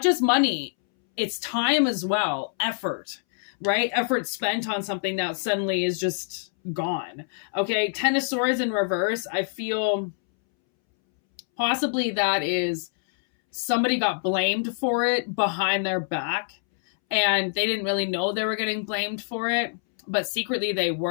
just money, it's time as well, effort, right? Effort spent on something that suddenly is just gone. Okay, 10 of Swords in reverse. I feel possibly that is somebody got blamed for it behind their back and they didn't really know they were getting blamed for it, but secretly they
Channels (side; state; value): right; silent; 61 dB below the other